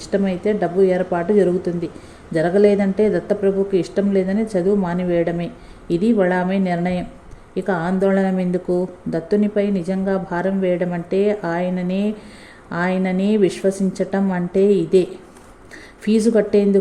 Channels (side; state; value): both; identical; correlation 1.00